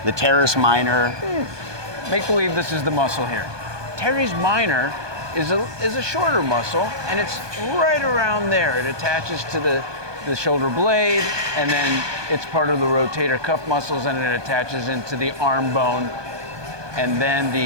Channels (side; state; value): left; late; 1.2 ms